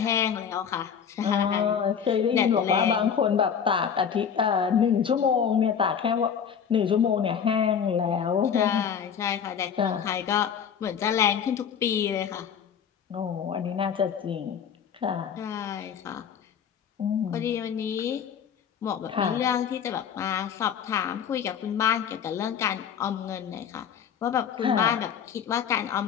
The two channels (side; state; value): right; quieter; 7.7 dB